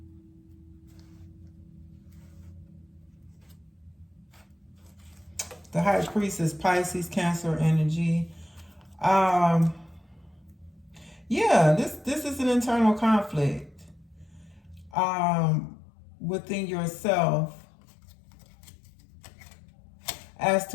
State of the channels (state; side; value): drops out; right; at 15.0 s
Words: the High Priestess, Pisces, Cancer energy. Yeah, this is an internal conflict within yourself as